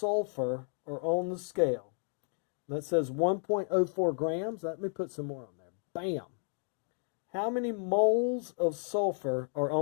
are on the scale? That says 1.04 grams. Let me put some more on there. Bam. How many moles of sulfur are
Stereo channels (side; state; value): right; silent; 56 dB below the other